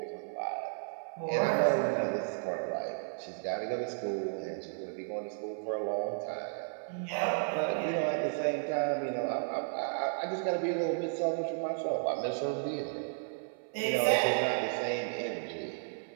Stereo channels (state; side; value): silent; left; 55 dB below the other